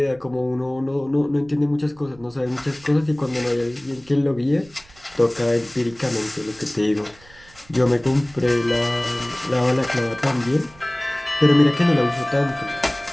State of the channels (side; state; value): right; noise; rumble, 26 dB below the sound